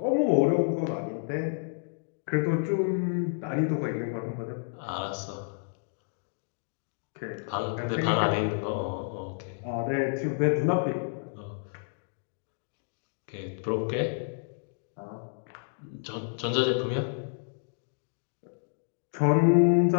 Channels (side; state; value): right; silent; digital silence